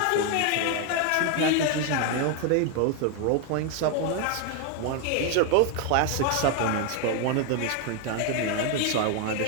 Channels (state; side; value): different; both; correlation 0.01